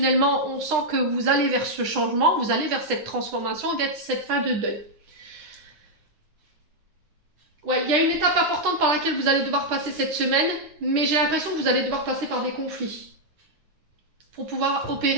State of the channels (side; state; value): left; late; 9.9 ms